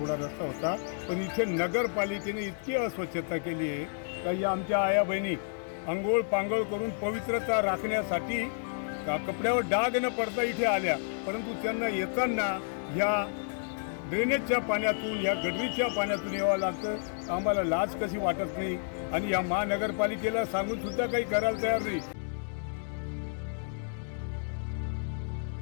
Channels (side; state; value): right; silent; digital silence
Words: रस्ता होता, पण इथे नगरपालिकेने इतकी अस्वच्छता केली आहे का या आमच्या आया बहिणी अंघोळ पांघोळ करून पवित्रता राखण्यासाठी कपड्यावर डाग न पडता इथे आल्या, परंतु त्यांना येताना ह्या ड्रेनेजच्या पाण्यातून या गटरीच्या पाण्यातून यावं लागतं. आम्हाला लाज कशी वाटत नाही आणि या महानगरपालिकेला सांगून सुद्धा काही करायला तयार नाही.